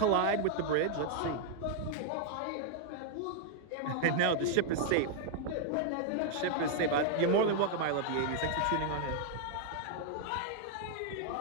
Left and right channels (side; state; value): both; different; correlation -0.01